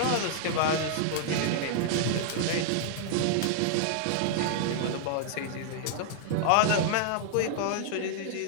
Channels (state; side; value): different; both; correlation -0.01